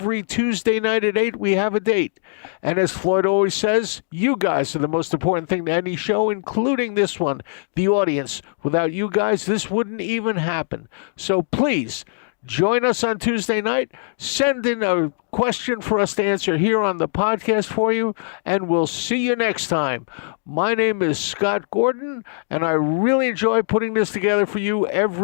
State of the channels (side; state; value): right; silent; digital silence